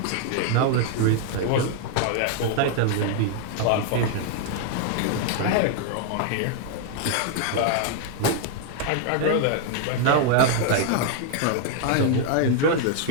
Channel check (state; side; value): different; both; correlation 0.00